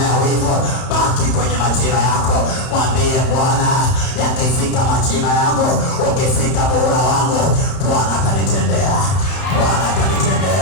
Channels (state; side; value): late; right; 31 ms